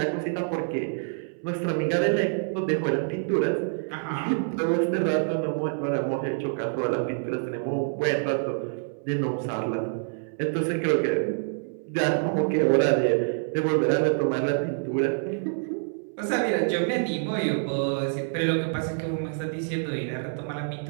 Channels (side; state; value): left; silent; 60 dB below the other